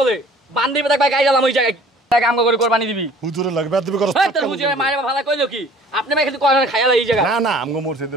বান্দি বেটা ভাই গাই গেলাম ওই জায়গায়, টাকা আমগো করে কুরবানি দিবি। হুজুরের লাগবে দিবি করছ? এই তোর হুজুরে মাইরে ভালো কইলো কি? আপনি ভাই খালি কোন খায়ালা এই জায়গা? না আমগো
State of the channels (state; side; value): normal; both; correlation 0.51